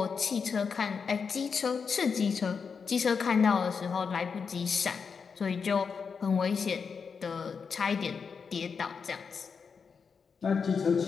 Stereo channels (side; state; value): right; quieter; 5.8 dB